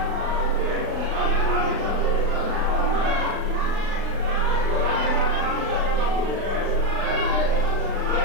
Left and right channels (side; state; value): left; late; 36 ms